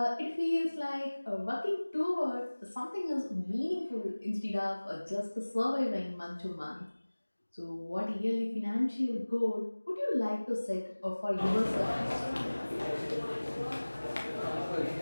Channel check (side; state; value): both; inverted; correlation -1.00